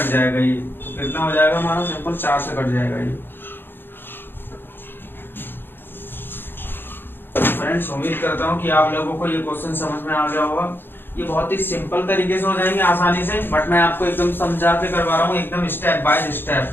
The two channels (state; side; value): late; right; 0.10 ms